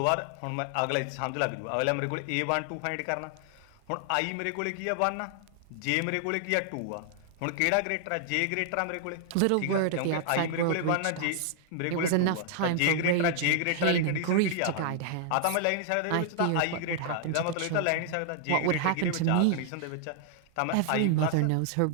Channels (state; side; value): different; both; correlation 0.00